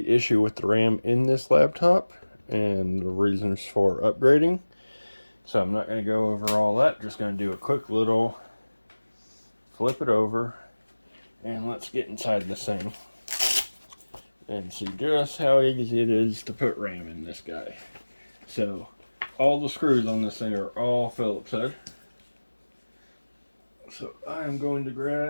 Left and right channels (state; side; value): inverted; both; correlation -1.00